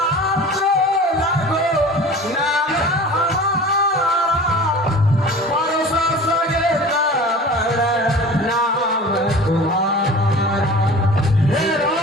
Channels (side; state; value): both; normal; correlation 0.40